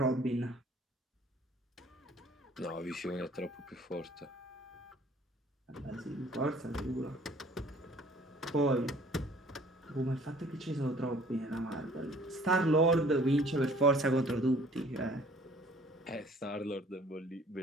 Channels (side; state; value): both; normal; correlation 0.54